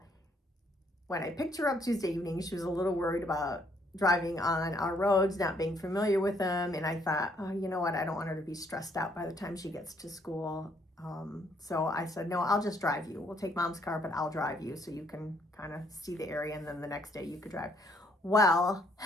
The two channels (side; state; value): both; normal; correlation 0.68